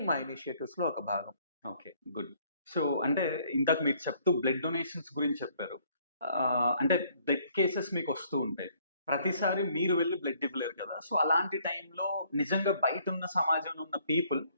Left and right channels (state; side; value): inverted; both; correlation -0.64